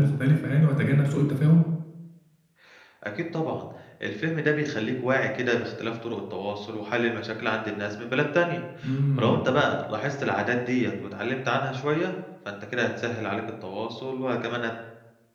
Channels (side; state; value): both; identical; correlation 1.00